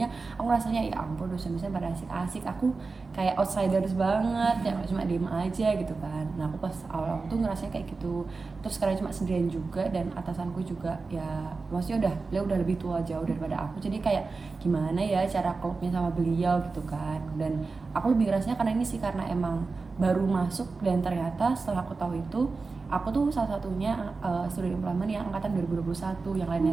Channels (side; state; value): left; quieter; 4.1 dB